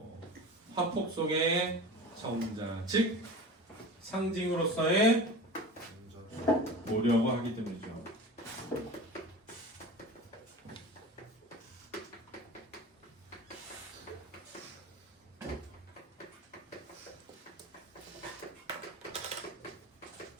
화폭 속의 정자, 즉 상징으로서의 오려고 하기 때문이죠.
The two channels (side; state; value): both; normal; correlation 0.34